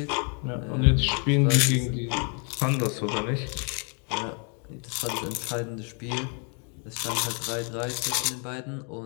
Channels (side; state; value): right; quieter; 38.8 dB